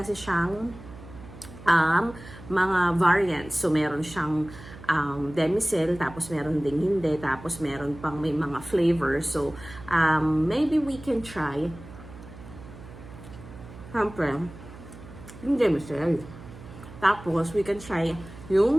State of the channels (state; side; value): noise; right; hum, 16 dB below the sound